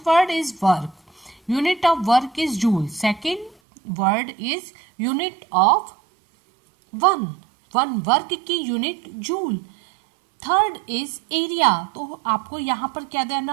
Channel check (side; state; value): left; drops out; at 3.6 s